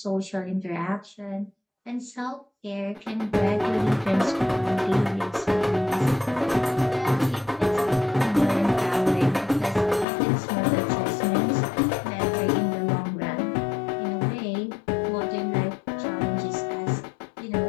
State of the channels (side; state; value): right; drops out; at 10.1 s